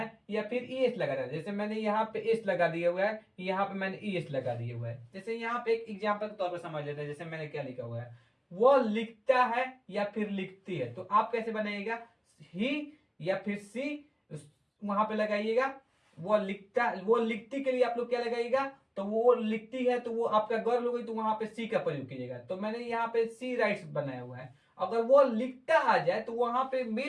या फिर ईएस लगा देना है। जैसे मैंने यहाँ पे एस लगा दिया हुआ है, यहाँ पे मैंने ईएस लगा दिया हुआ है। जैसे यहाँ पे एक एग्जांपल के तौर पर समझ लेते हैं, जैसे मैंने क्या लिखा हुआ है, वो लिखता है या फिर लिखती है, तो आप कैसे बनाइएगा, ही या फिर सी वहां पे लगाइएगा। वो लिखती के लिए आप लोग क्या लगाइएगा, तो वो लिखती है तो वो आपका गर्ल हो गई, तो वहां पे सी का प्रयोग कीजिएगा। तो मैंने यहाँ पे सी राइट्स बनाया हुआ है। अगर वो लिखता आ जाए तो वहां पे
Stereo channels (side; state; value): both; identical; correlation 1.00